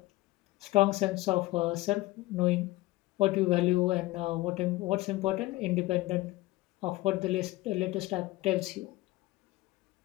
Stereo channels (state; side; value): quieter; right; 19.2 dB